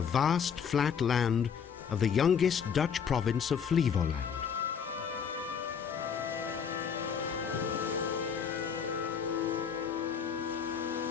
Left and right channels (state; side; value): quieter; right; 7.1 dB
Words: flat land of the youngest Dutch province of Flevoland.